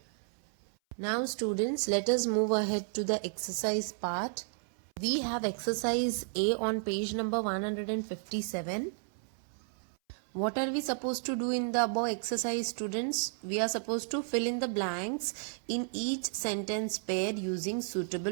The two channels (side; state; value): left; silent; 56 dB below the other